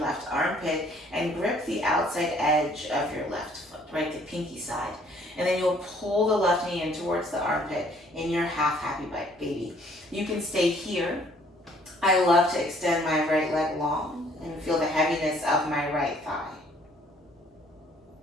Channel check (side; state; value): both; normal; correlation 0.60